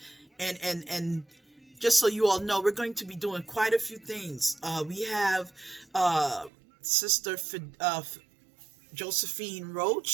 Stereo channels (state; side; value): drops out; left; at 6.5 s